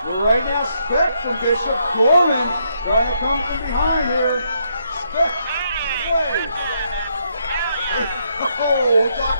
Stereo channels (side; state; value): both; inverted; correlation -0.76